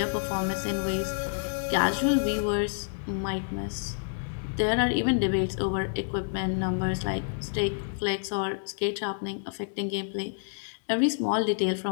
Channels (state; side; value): silent; right; digital silence